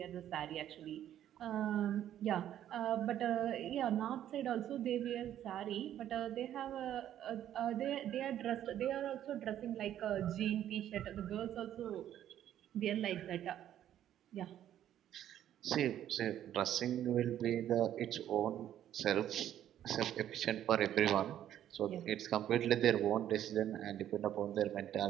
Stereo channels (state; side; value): quieter; left; 11.3 dB